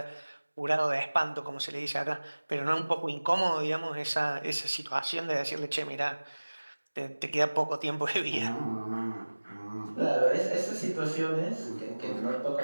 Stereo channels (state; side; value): inverted; both; correlation -1.00